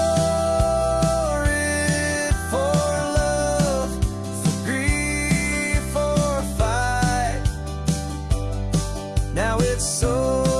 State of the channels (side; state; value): both; identical; correlation 1.00